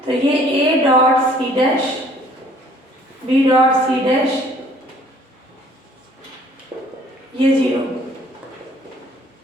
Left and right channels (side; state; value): both; normal; correlation 0.57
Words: तो ये a dot C dash, b dot C dash, ये 0